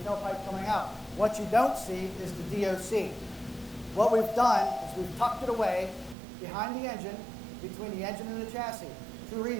tailpipe coming out. What you don't see is the DOC. What we've done is we've tucked it away behind the engine, between the engine and the chassis. 2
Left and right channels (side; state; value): left; drops out; at 6.2 s